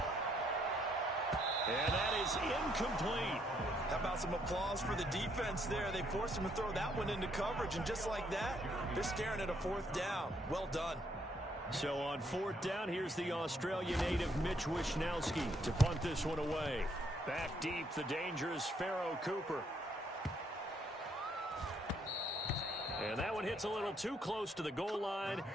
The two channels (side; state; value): both; normal; correlation 0.71